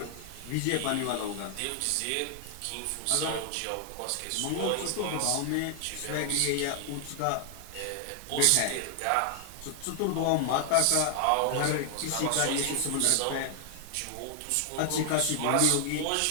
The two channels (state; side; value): different; both; correlation 0.00